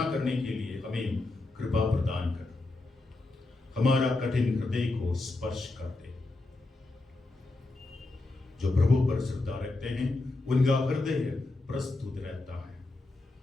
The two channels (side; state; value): right; quieter; 3.1 dB